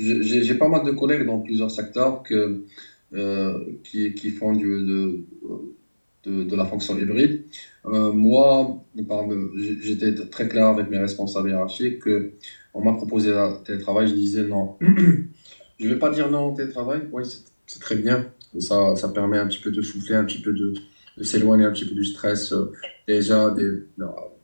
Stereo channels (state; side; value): inverted; both; correlation -1.00